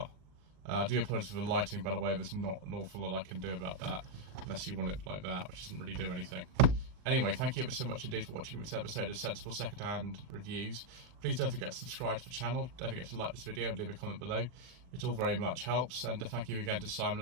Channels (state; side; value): late; left; 39 ms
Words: I do apologise for the lighting, by the way. There's not an awful lot I can do about that, unless you want it like that, which doesn't really do anything. Anyway, thank you ever so much indeed for watching this episode of Sensible Secondhand Reviews. Please don't forget to subscribe to the channel. Don't forget to like this video and leave a comment below. It all very much helps. And thank you again to Simon